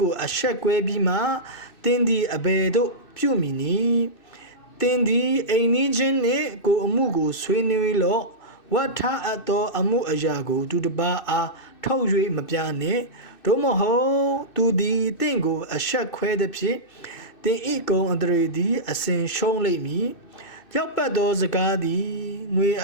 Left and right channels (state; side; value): late; right; 2.6 ms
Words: ကိုအဆက်ကွဲပြီးမှတင်းသည်အဘယ်သို့ပြုမိနည်းတင်းသည်အိမ်နီးချင်းနှင့်ကိုအမှုကိုဆွေးနွေးလော့ဝတ်ထားအပ်သောအမှုအရာကိုသူတစ်ပါးအားထုတ်၍မပြနှင့်တို့မဟုတ်သူသည်တင့်ကိုအဆက်ခွဲသည်ဖြင့်တင်ဤကုံအတရေသည်အစဉ်ရှုံးလိမ့်မည်ရောက်ပတ်သောစကားသည်ငွေ